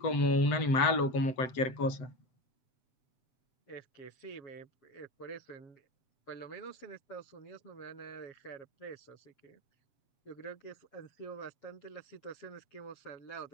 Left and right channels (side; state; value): right; late; 7.9 ms